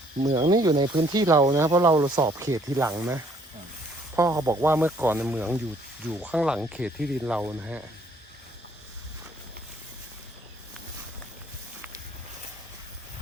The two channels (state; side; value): normal; both; correlation 0.63